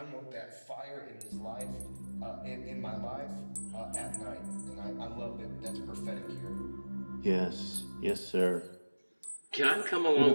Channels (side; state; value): both; inverted; correlation -1.00